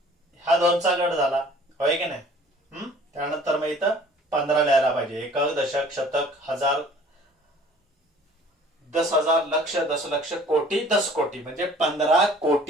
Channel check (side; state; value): both; normal; correlation 0.51